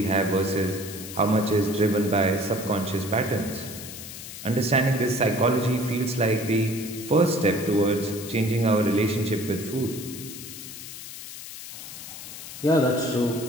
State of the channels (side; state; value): left; noise; hiss, 11 dB below the sound